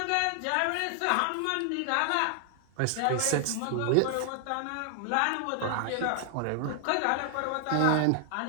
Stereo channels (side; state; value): both; different; correlation 0.00